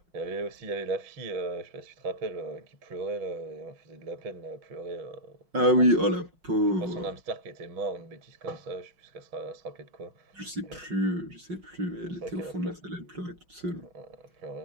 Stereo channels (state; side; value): late; left; 5.5 ms